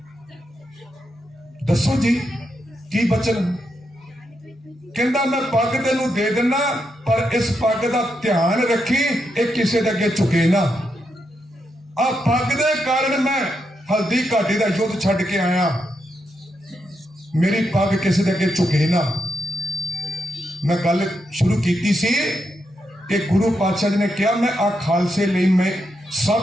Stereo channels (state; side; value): normal; both; correlation 0.83